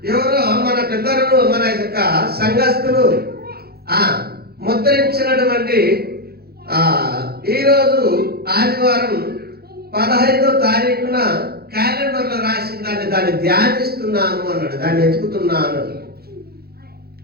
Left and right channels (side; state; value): left; late; 0.46 ms